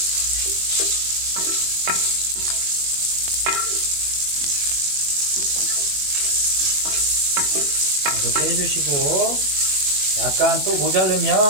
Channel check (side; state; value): left; late; 21 ms